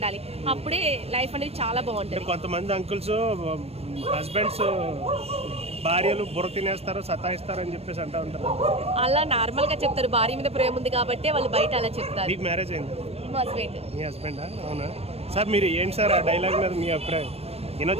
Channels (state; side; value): late; left; 0.29 ms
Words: అప్పుడే లైఫ్ అనేది చాలా బాగుంటుంది. కొంతమంది అంకుల్స్ హస్బెండ్స్ భార్యలు బుర్ర తినేస్తారు, సతాయిస్తారు అని చెప్పేసి అంటూ ఉంటారు. అలా నార్మల్ గా చెప్తారు, భార్య మీద ప్రేమ ఉంది కాబట్టి వాళ్ళు బయట అలా చెప్తారు. మీకు మ్యారేజ్ అయింది? హస్బెండ్. మీ హస్బెండా? అవునా సార్. మీరు ఏంటి సార్ ఆ డైలాగ్ మీద మీ అభిప్రాయం?